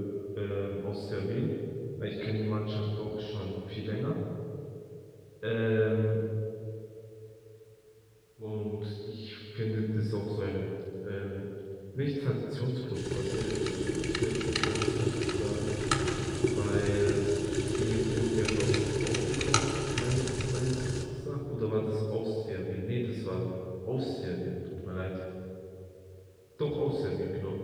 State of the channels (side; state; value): both; identical; correlation 1.00